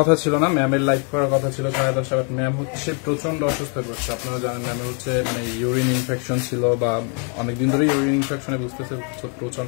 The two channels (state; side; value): quieter; right; 38.9 dB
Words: ছিল না, ম্যামের লাইভ করার কথা ছিল 10:30। ম্যাম হচ্ছে প্রচন্ড অসুস্থ হয়ে পড়ছে। আপনারা জানেন ম্যামের হচ্ছে মানে ইউরিন ইনফেকশন ছিল, বা অনেকদিন ধরে ইউরিন ইনফেকশনে বুঝতেছে